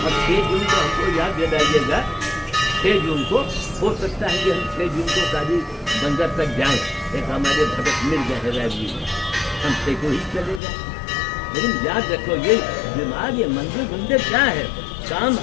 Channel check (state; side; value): drops out; right; at 10.6 s